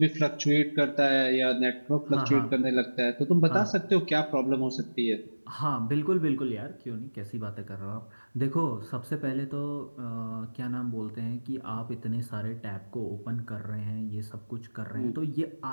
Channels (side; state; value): both; inverted; correlation -1.00